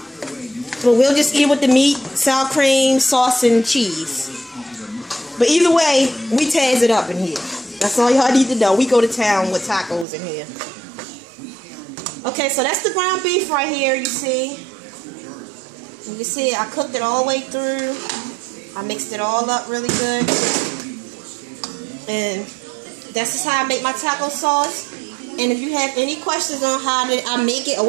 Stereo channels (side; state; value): left; drops out; at 10.1 s